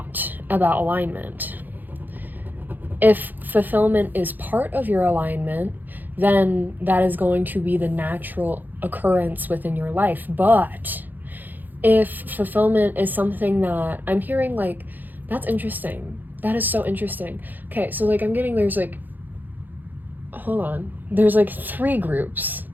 about alignment. If fulfillment is part of your alignment, then that is going to be the natural occurrence within your life. But if fulfillment is something that I'm hearing, like, that's interesting. That is so interesting. Okay, so like there's like, hold on. There's like 3 groups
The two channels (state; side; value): late; left; 0.086 ms